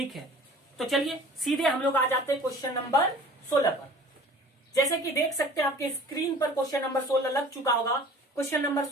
है। तो चलिए सीधे हम लोग आ जाते हैं क्वेश्चन नंबर 16 पर। जैसे कि देख सकते हैं आपके स्क्रीन पर क्वेश्चन नंबर 16 लग चुका होगा। क्वेश्चन नंबर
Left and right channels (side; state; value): both; normal; correlation 0.45